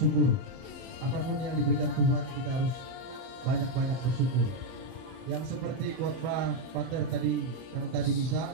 Apapun yang diberikan Tuhan kita harus banyak-banyak bersyukur. Yang seperti khotbah Pater tadi yang tadi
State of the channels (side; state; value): left; late; 30 ms